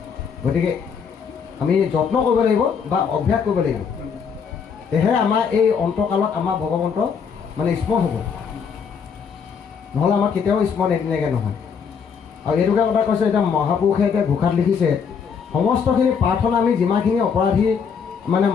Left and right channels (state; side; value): quieter; right; 6.5 dB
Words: গতিকে আমি যত্ন কৰিব লাগিব বা অভ্যাস কৰিব লাগিব, তেহে আমাৰ এই অন্তকালত আমাৰ ভগৱন্ত মানে স্মৰণ হ'ব, নহ'লে আমাৰ কেতিয়াও স্মৰণ এদিনাকৈ নহয়। আৰু এইটোকে কথা কৈছে, এতিয়া মহাপুৰুষে এতিয়া ঘোষাত লিখিছে সমস্তখিনি প্ৰাৰ্থনা আমি যিমানখিনি অপৰাধী মানে